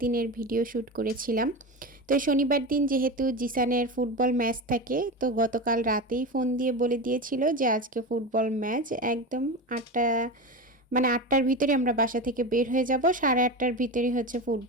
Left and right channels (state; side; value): normal; both; correlation 0.23